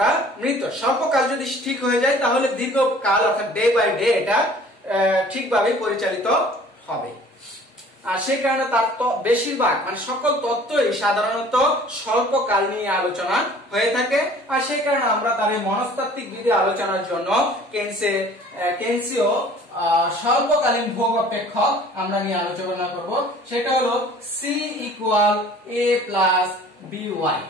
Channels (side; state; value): both; normal; correlation 0.50